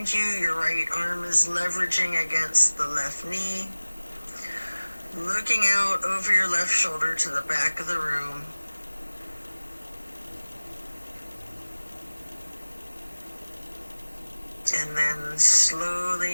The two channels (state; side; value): inverted; both; correlation -1.00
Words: you, your right arm is leveraging against the left knee. Looking out over your left shoulder to the back of the room. And then